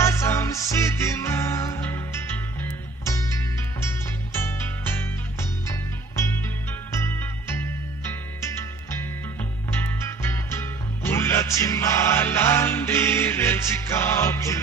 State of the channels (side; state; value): left; quieter; 3.6 dB